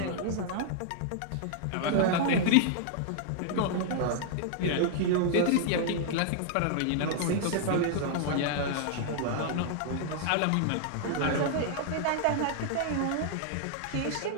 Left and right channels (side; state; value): both; different; correlation -0.01